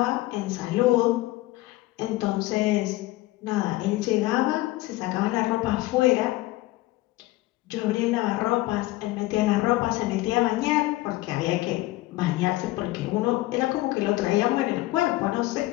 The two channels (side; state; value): right; quieter; 18.4 dB